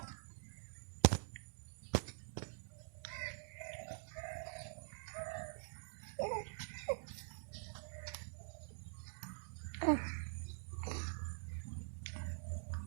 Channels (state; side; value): silent; left; digital silence